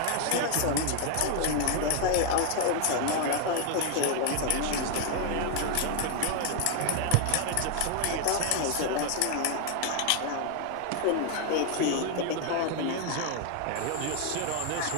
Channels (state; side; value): different; both; correlation 0.00